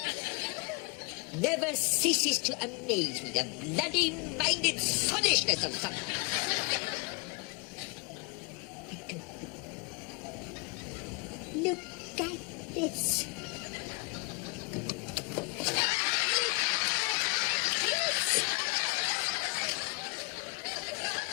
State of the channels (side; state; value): right; quieter; 30.5 dB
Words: Never ceases to amaze me, the bloody-minded soddishness of some... Look at this.